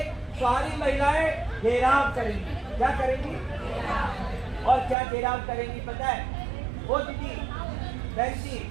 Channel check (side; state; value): left; drops out; at 5.0 s